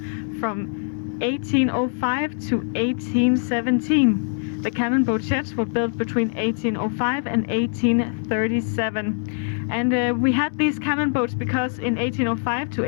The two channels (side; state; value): right; silent; 63 dB below the other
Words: from 1805 to 1817. The cannon boat sheds were built between 1805 and 1837. And we had these cannon boats because in 1805 to